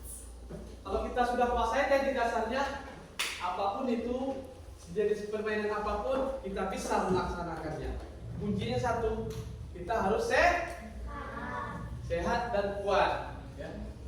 sudah kuasai teknik dasarnya, apapun itu jenis permainan apapun kita bisa melaksanakannya. Kuncinya satu, kita harus sehat dan kuat ya.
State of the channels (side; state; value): both; identical; correlation 1.00